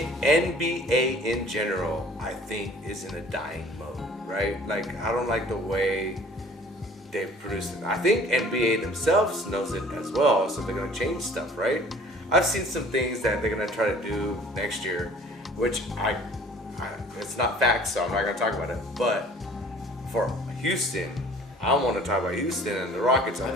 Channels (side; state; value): both; normal; correlation 0.50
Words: NBA in general, I think is in a dying mode, right? Like I don't like the way they've produced it. I think NBA themselves knows it as well, so they're gonna change stuff, right? I've seen some things that they're gonna try to do next year, which I it's not facts, so I'm not gonna talk about it. But for Houston, I want to talk about Houston and the Rockets. I